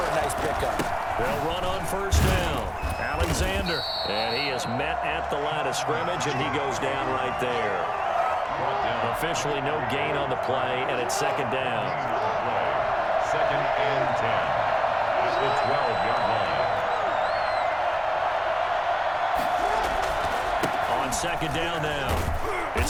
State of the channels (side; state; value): both; identical; correlation 1.00